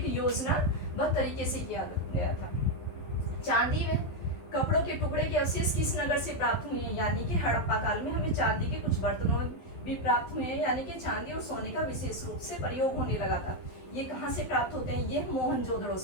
योजनाबद्ध तरीके से किया गया था। चांदी में कपड़ों के टुकड़े के अवशेष किस नगर से प्राप्त हुए हैं? यानी कि हड़प्पा काल में हमें चांदी के कुछ बर्तनों भी प्राप्त हुए हैं, यानी कि चांदी और सोने का विशेष रूप से प्रयोग होने लगा था। ये कहाँ से प्राप्त होते हैं? ये मोहनजोदड़ो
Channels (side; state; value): right; late; 12 ms